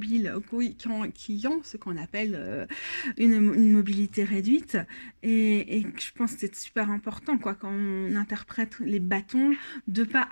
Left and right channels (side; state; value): both; inverted; correlation -1.00